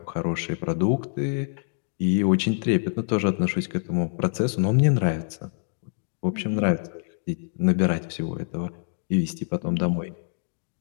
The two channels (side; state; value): right; silent; digital silence